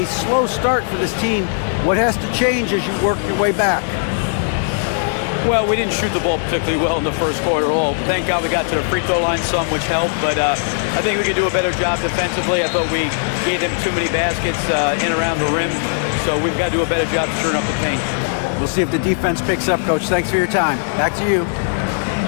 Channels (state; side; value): silent; right; digital silence